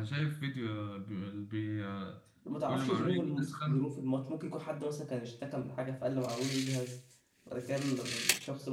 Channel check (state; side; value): identical; both; correlation 1.00